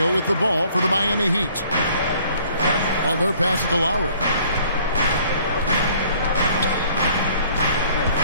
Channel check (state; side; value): inverted; both; correlation -0.57